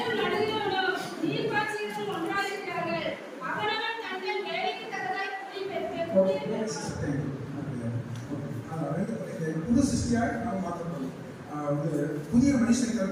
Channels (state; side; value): identical; both; correlation 1.00